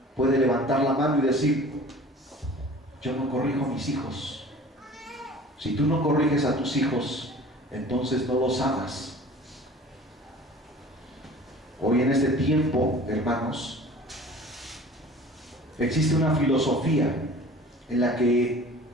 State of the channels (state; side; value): normal; both; correlation 0.45